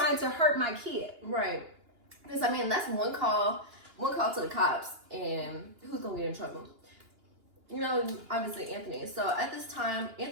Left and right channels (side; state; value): left; late; 2.9 ms